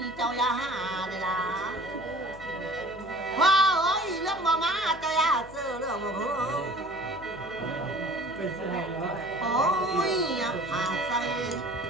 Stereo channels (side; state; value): left; noise; hum, 19 dB below the sound